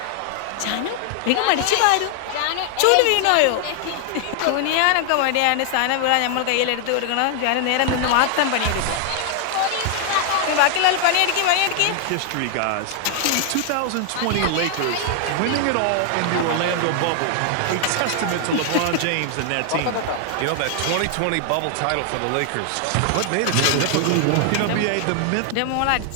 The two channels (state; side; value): different; both; correlation 0.00